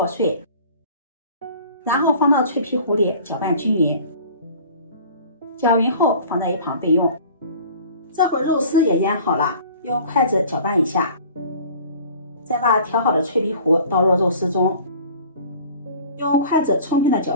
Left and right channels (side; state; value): both; inverted; correlation -0.46